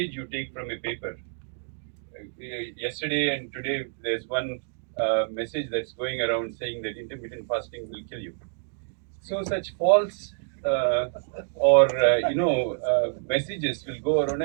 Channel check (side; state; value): left; silent; digital silence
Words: you take from a paper. Yesterday and today, there's one message that's going around saying that intermittent fasting will kill you. So such false messages will go around,